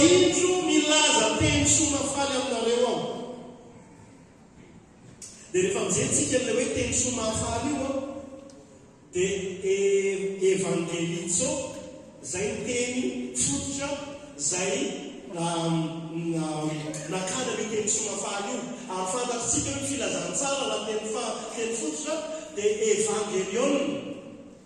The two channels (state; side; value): identical; both; correlation 1.00